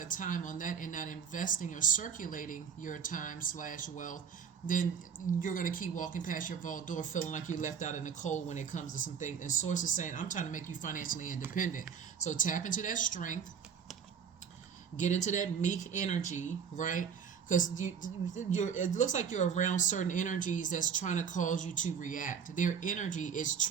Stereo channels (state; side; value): quieter; left; 7.1 dB